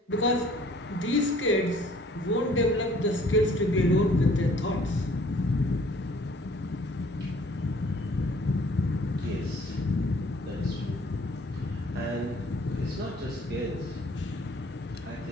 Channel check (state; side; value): normal; both; correlation 0.56